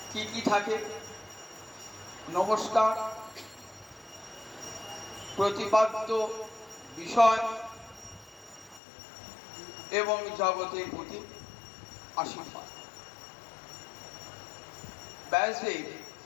কি কি থাকে? নমস্কার, প্রতিপাদ্য বিষয় এবং জগতের প্রতি আশীর্বাদ। ব্যাসদেব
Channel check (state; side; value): drops out; right; at 8.8 s